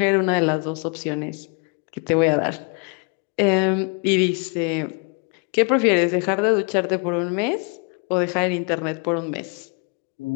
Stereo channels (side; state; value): right; quieter; 35.9 dB